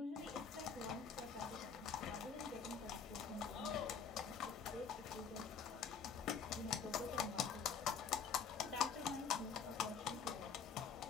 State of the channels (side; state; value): right; quieter; 6.3 dB